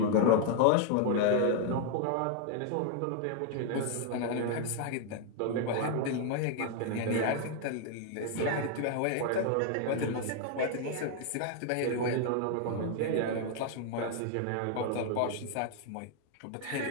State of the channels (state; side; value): different; both; correlation 0.00